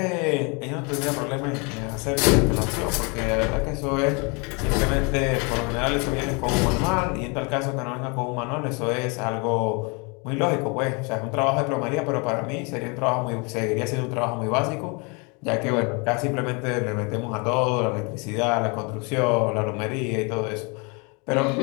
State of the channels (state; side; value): quieter; right; 31.4 dB